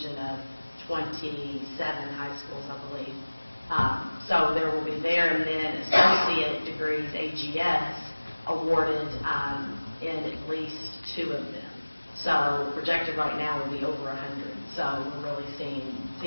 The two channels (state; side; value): inverted; both; correlation -1.00